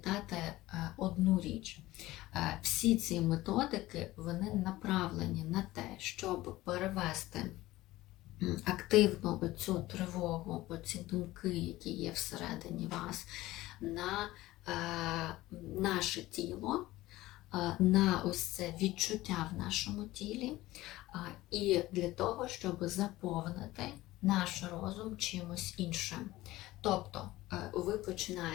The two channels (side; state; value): right; quieter; 17.4 dB